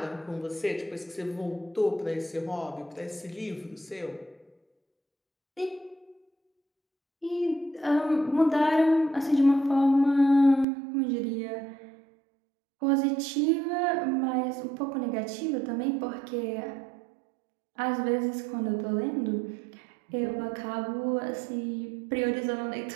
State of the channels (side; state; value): left; drops out; at 10.7 s